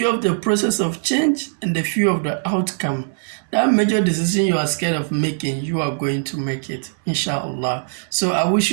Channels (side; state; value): left; silent; digital silence